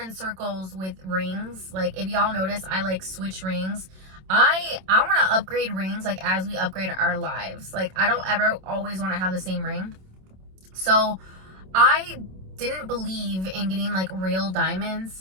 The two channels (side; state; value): left; late; 27 ms